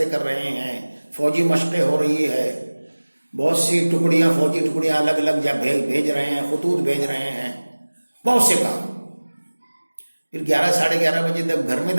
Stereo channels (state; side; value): inverted; both; correlation -1.00